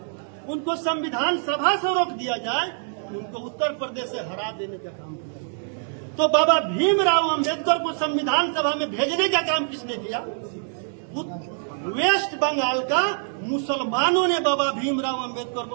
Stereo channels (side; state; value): left; silent; 62 dB below the other